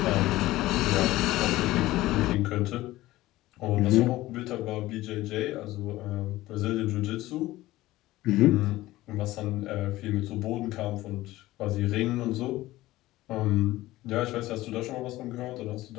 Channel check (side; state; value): right; quieter; 17.1 dB